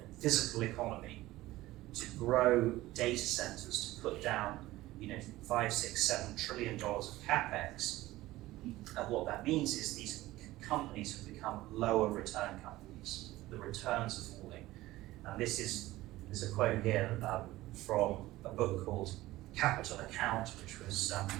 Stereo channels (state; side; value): quieter; left; 17.3 dB